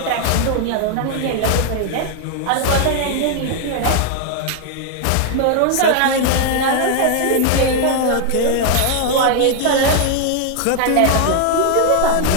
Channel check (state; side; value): different; both; correlation 0.00